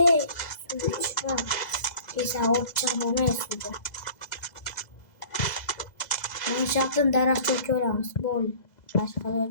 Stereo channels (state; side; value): late; right; 2.0 ms